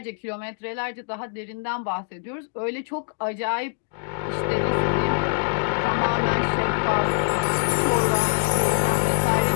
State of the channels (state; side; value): silent; right; digital silence